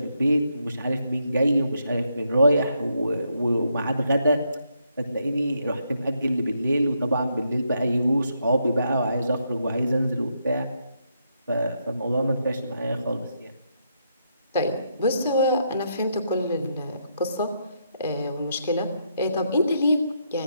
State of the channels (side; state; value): both; inverted; correlation -0.78